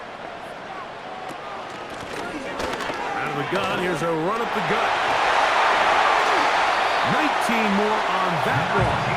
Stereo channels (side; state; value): both; identical; correlation 1.00